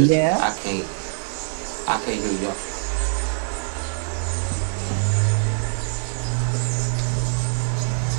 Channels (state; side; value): silent; left; 63 dB below the other